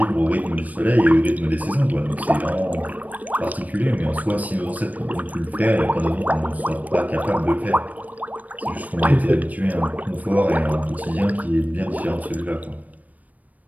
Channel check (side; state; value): left; late; 0.075 ms